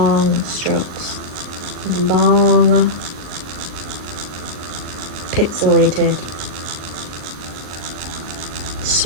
strokes, long pixelated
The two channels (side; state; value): left; late; 39 ms